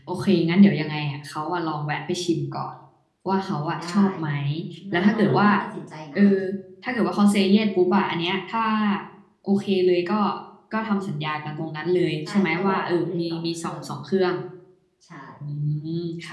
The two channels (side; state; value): both; identical; correlation 1.00